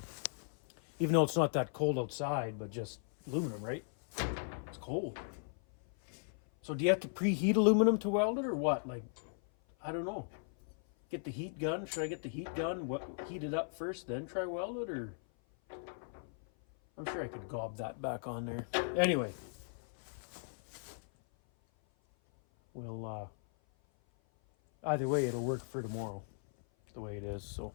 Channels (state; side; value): silent; right; 53 dB below the other